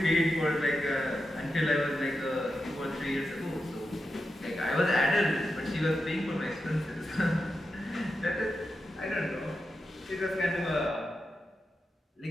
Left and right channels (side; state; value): both; normal; correlation 0.89